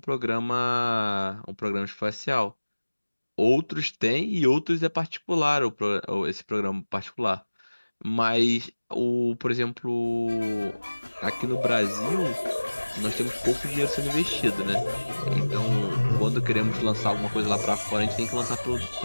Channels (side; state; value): both; inverted; correlation -1.00